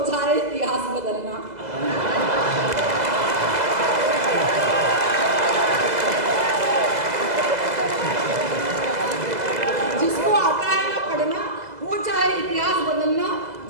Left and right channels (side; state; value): left; late; 2.0 ms